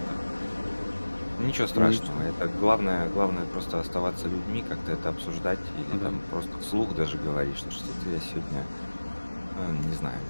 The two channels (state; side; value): inverted; both; correlation -1.00